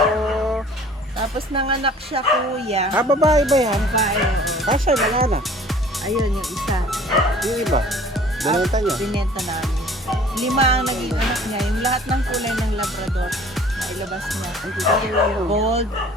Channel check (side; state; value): both; normal; correlation 0.50